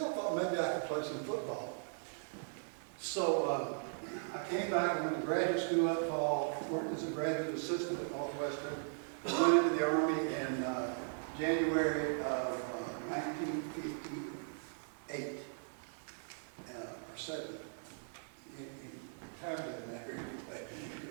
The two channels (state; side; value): silent; left; digital silence